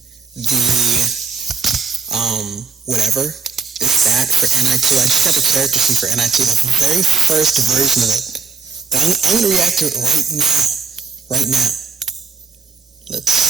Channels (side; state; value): left; quieter; 5.4 dB